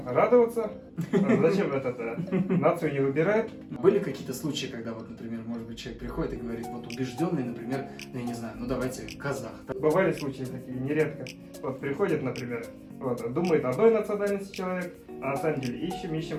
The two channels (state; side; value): identical; both; correlation 1.00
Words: радоваться. Зачем нацию не выбирают? Были какие-то случаи, когда вот, например, может быть, человек приходит и говорит, вот убежденный, например, ну, я не знаю, ну давайте казах. Бывали случаи такие, нередко. Вот приходит, например, вот, думает одной национальности человек, а на самом деле